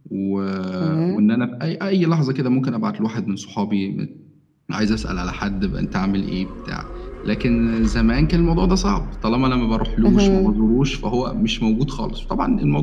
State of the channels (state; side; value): identical; both; correlation 1.00